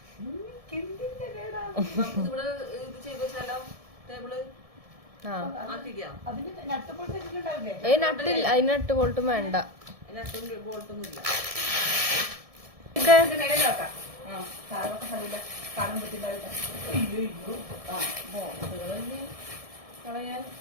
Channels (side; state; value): left; late; 1.7 ms